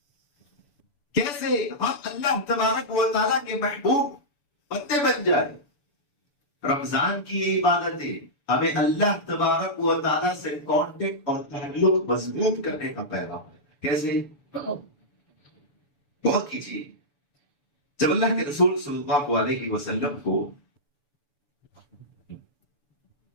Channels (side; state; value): right; late; 6.9 ms